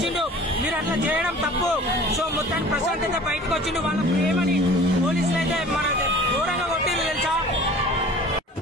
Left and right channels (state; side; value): normal; both; correlation 0.44